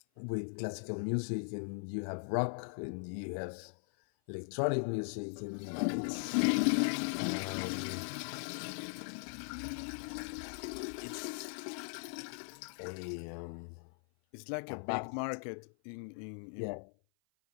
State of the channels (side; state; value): right; silent; 52 dB below the other